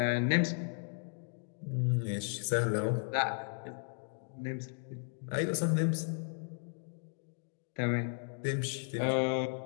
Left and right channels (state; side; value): silent; right; 54 dB below the other